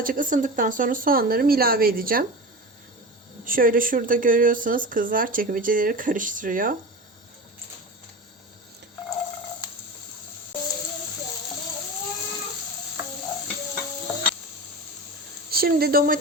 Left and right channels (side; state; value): both; normal; correlation 0.28